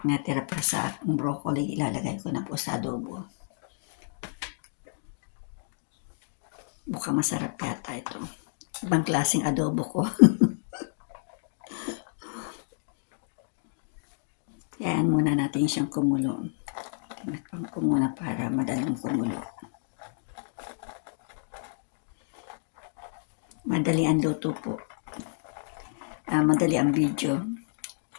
natira pa sa aking broccoli, ilalagay ko na po sa adobo. Mukhang masarap yata ito. Ibang klaseng adobo ko. Ayan muna natin siyang kumulo. Tinakpan ko muna para madaling kumulo. Madali ang luto po. Madali ang video.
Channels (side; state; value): right; silent; digital silence